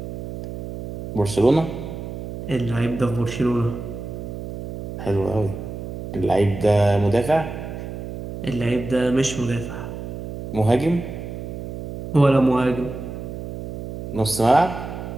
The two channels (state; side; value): noise; right; hum, 8 dB below the sound